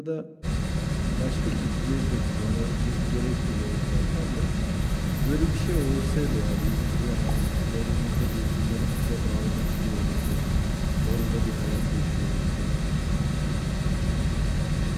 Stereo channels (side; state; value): both; identical; correlation 1.00